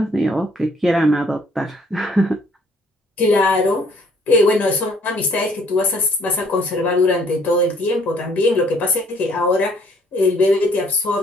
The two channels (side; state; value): both; normal; correlation 0.61